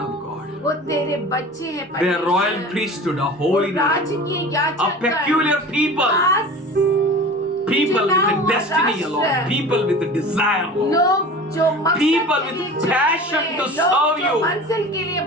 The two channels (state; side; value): normal; both; correlation 0.37